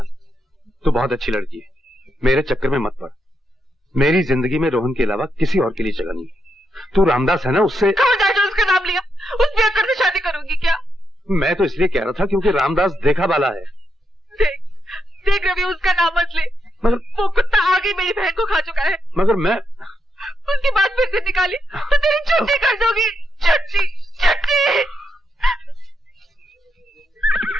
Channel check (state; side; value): normal; both; correlation 0.82